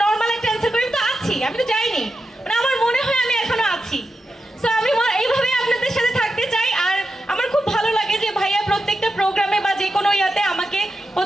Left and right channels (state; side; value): normal; both; correlation 0.89